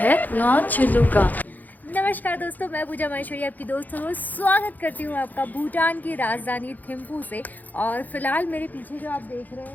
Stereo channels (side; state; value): right; late; 0.083 ms